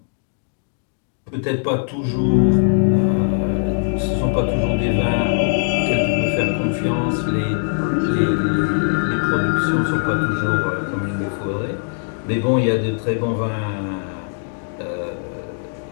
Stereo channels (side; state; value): right; silent; digital silence